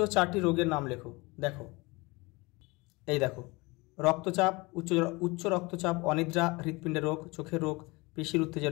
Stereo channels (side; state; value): right; quieter; 24.6 dB